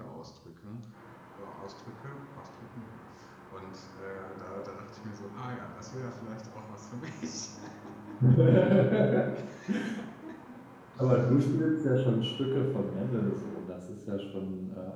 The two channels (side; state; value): both; identical; correlation 1.00